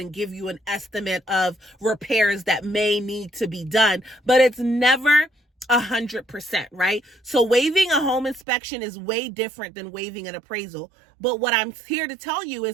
give you an estimate of repairs that may need to be done. But it's never 100%, right? So waiving a home inspection is way different than waiving an appraisal. But what I'm here to tell you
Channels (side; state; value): left; drops out; at 8.5 s